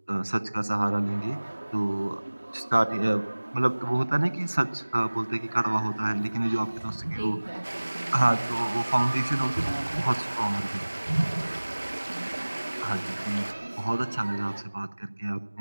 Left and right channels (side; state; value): both; inverted; correlation -1.00